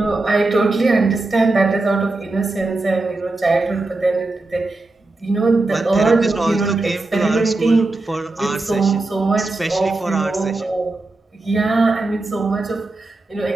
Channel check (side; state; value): left; quieter; 3.1 dB